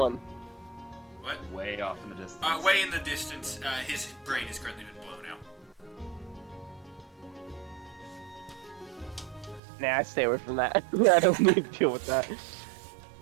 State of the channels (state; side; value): drops out; left; at 9.6 s